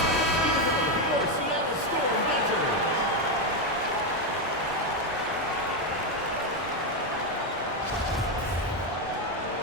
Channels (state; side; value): normal; both; correlation 0.07